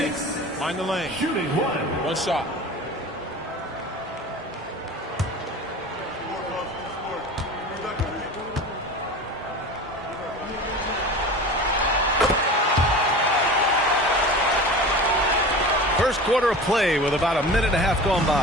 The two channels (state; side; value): normal; both; correlation 0.34